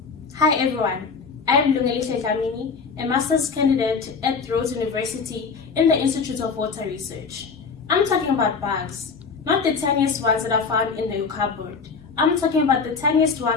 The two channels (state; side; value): quieter; right; 5.2 dB